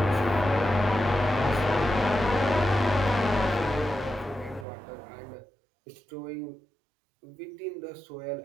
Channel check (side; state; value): left; drops out; at 4.7 s